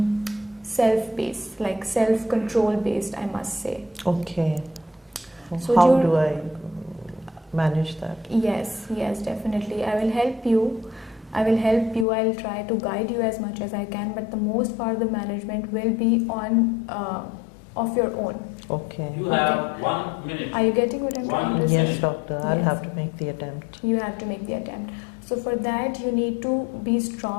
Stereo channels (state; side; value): drops out; right; at 12.1 s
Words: self-based, like self-control based, I must say. Okay. So how do I manage that? Yes, definitely. I will help you. I'll try to guide you as much as I can, but the most part of the management will be on of your own. Okay. You have 1 minute. Are you getting what I'm trying to say? Yes, doctor. I'll have to make the attempt. You have to make the attempt. So for that, you need to be